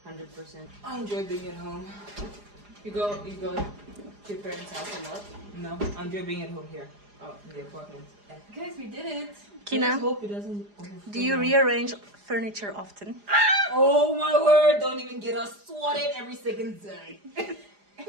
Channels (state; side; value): late; left; 4.9 ms